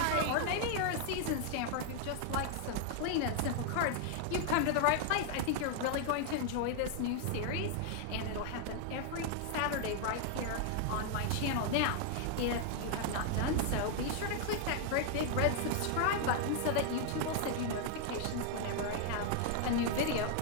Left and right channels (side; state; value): both; different; correlation 0.00